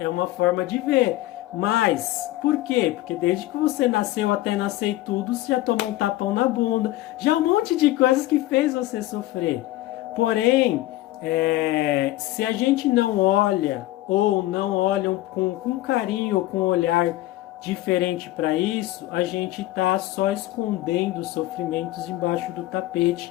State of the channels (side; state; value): right; quieter; 16.4 dB